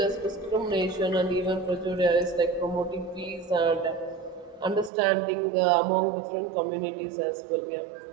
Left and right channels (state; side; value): drops out; left; at 4.9 s